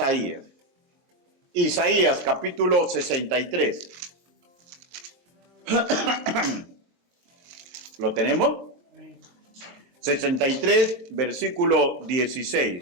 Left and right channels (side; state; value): left; late; 22 ms